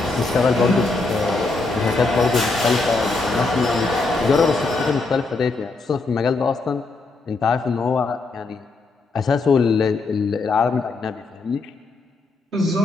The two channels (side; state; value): right; quieter; 3.7 dB